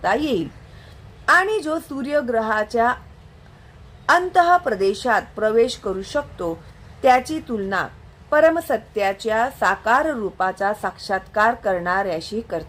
येईल. आणि जो सूर्यग्रहाच्या अंतः प्रदेशात प्रवेश करू शकतो त्याची तुलना परमसत्याच्या साकार रूपाचा साक्षात्कार करणाऱ्याशी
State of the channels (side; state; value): both; identical; correlation 1.00